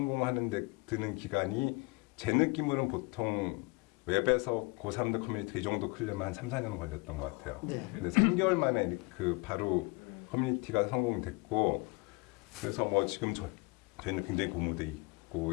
데 드는 기간이 제 느낌으로는 보통 웹에서 고3들 커뮤니티가 이 정도 크려면 한 3, 4년 걸렸던 것 같아요. 네. 근데 3개월 만에 그 바로 커뮤니티가 성공됐고, 그래서 뭐 지금 저희는 굉장히 고무돼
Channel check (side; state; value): right; quieter; 28.1 dB